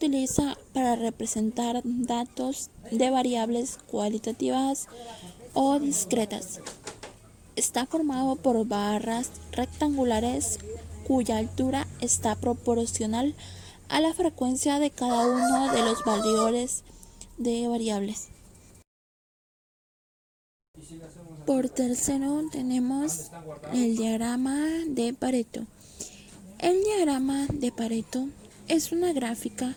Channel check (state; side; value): identical; both; correlation 1.00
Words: para representar datos de variables cualitativas o discretas. Está formado por barras rectangulares cuya altura está proporcional a la frecuencia de cada uno de los valores de variables. Por tercero tenemos el diagrama de Pareto. El diagrama de Pareto es una gráfica